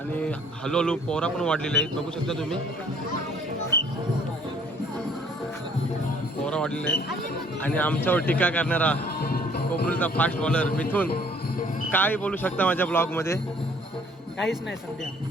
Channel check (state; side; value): normal; both; correlation 0.58